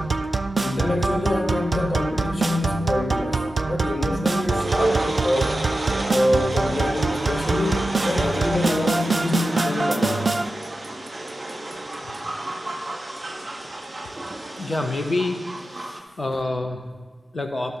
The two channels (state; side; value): normal; both; correlation 0.92